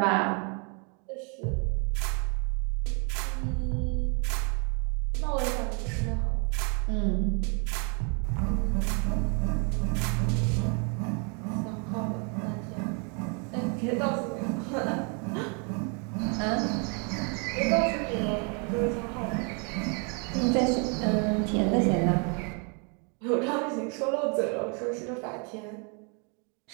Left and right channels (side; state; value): left; quieter; 36.3 dB